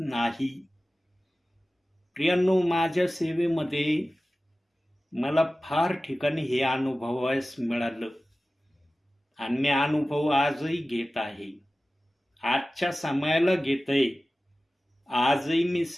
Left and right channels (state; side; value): normal; both; correlation 0.96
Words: नाही. प्रियांनो, माझ्या सेवेमध्ये मला फार ठिकाणी हे अनुभवायस मिळालं आणि मी अनुभव आजही घेत आहे. आजच्या समयाला घेतय. आजही मी